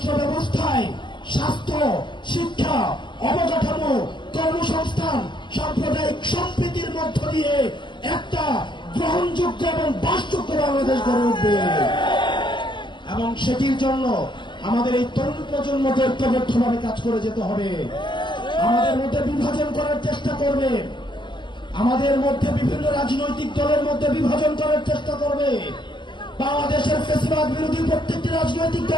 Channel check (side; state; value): right; late; 0.22 ms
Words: ব্যবস্থায় স্বাস্থ্য, শিক্ষা, অবকাঠামো, কর্মসংস্থান, সাম্প্রদায়িক সম্প্রীতির মধ্য দিয়ে একটা গ্রহণযোগ্য এবং বাসযোগ্য বাংলাদেশ গড়ে উঠবে। এবং সেটির জন্য আমাদের এই তরুণ প্রজন্মকে ঐক্যবদ্ধভাবে কাজ করে যেতে হবে। আমাদের মধ্যে বিভাজন করার চেষ্টা করবে, আমাদের মধ্যে বিভিন্ন রাজনৈতিক দলের মধ্যে বিভাজন করার চেষ্টা করবে। বাংলাদেশের ফ্যাসিবাদ বিরোধী প্রত্যেকটি রাজনৈতিক